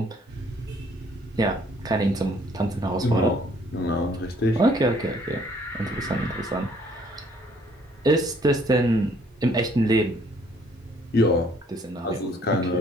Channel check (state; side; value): normal; both; correlation 0.62